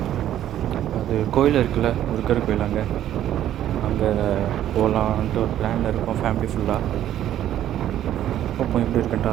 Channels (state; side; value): quieter; left; 11.7 dB